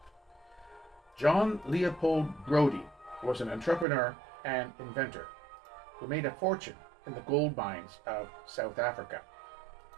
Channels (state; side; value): drops out; left; at 3.9 s